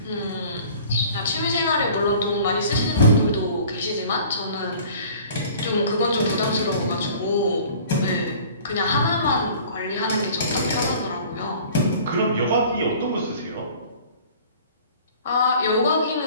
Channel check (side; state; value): both; inverted; correlation -0.48